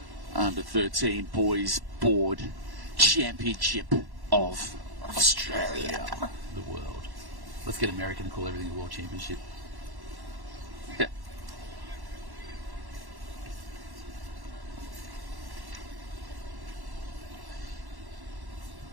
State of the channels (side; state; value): left; late; 1.1 ms